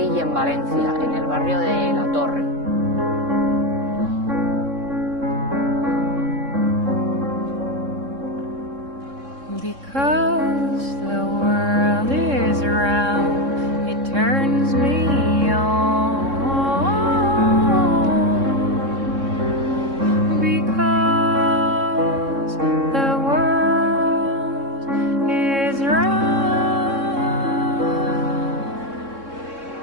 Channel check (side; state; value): left; late; 3.6 ms